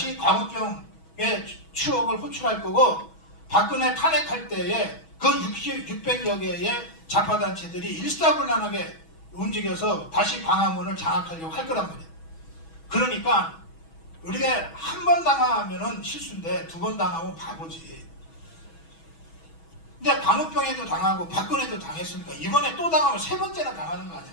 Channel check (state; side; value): late; right; 6.2 ms